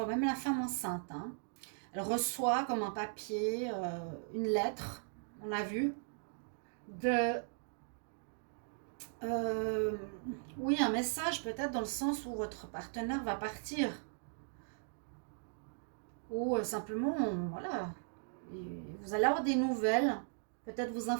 même la femme enceinte. Hein. Elle reçoit comme un papier, une lettre, on a vu, oui, un message peut-être dans le sens où votre partenaire va partir. Ou simplement, voilà, vous allez avoir des nouvelles, peut-être vous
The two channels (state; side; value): silent; left; digital silence